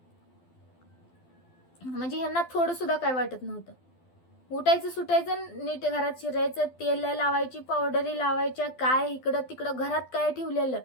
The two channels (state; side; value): late; right; 12 ms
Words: म्हणजे ह्यांना थोडं सुद्धा काय वाटत नव्हतं. उठायचं सुटायचं, नीट घरात शिरायचं, तेल लावायची, पावडरी लावायच्या, काय इकडं तिकडं घरात काय ठेवलेलं